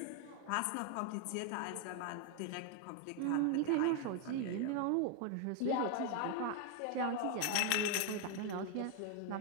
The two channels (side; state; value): both; different; correlation 0.00